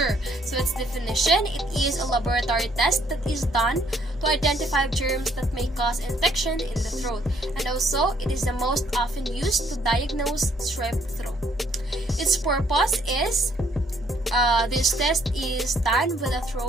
So, its definition, it is a laboratory test that is done to identify germs that may cause infection in the throat. And also, it is the most often used to diagnose strep throat. Its purpose is, this test is done when a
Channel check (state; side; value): normal; both; correlation 0.66